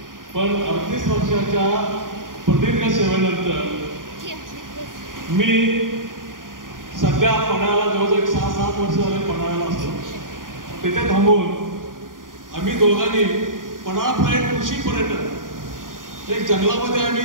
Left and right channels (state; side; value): late; left; 0.90 ms